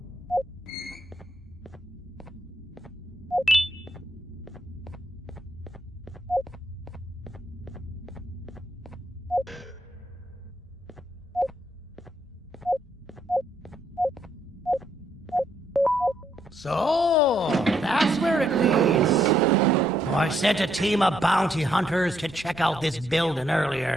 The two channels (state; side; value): normal; both; correlation 0.74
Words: So, that's where it leads. I sent a team of bounty hunters to check out this building